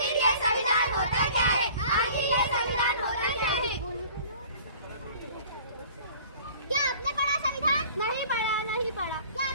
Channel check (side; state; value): both; inverted; correlation -0.48